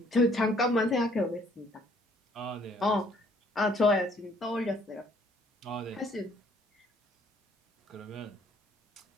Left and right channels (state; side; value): normal; both; correlation 0.62